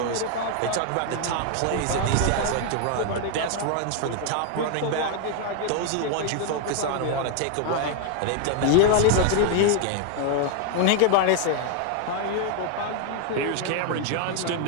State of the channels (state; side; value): different; both; correlation 0.00